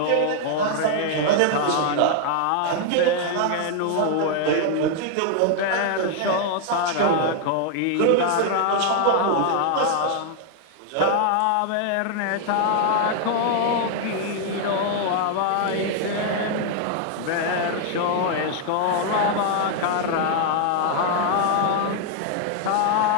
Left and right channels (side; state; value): both; different; correlation 0.00